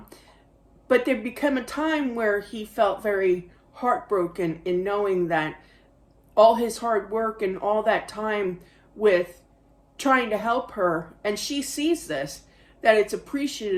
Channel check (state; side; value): identical; both; correlation 1.00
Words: But there became a time where he felt very heartbroken in knowing that all his hard work and all that time with trying to help her, and she sees this, that it's